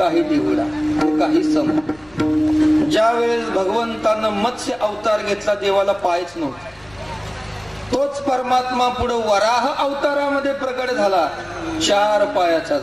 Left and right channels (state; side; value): noise; left; rumble, 27 dB below the sound